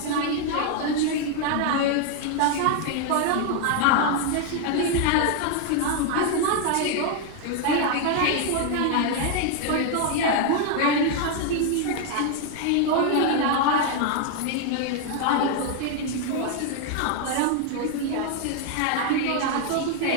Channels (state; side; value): different; both; correlation 0.00